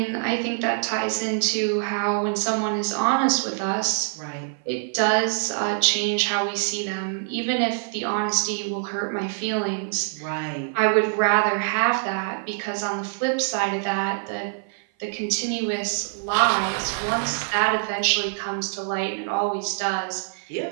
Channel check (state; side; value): silent; left; 56 dB below the other